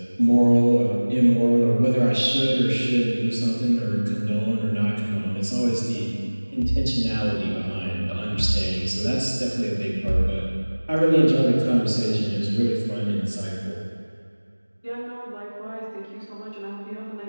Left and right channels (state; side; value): inverted; both; correlation -1.00